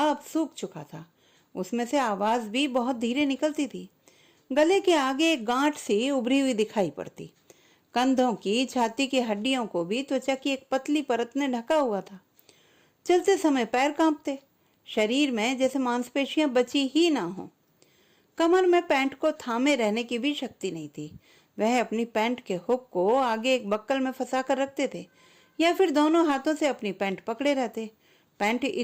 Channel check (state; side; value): identical; both; correlation 1.00